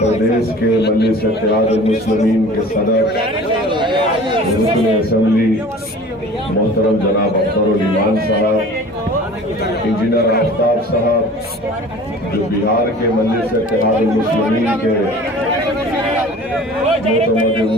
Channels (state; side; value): normal; both; correlation 0.43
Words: के मजलिस इत्तेहादुल मुस्लिमीन के सदर रुकन असेंबली मोहतरम जनाब अख्तरुल ईमान साहब, इंजीनियर आफ्ताब साहब जो बिहार के मजलिस इत्तेहादुल मुस्लिमीन के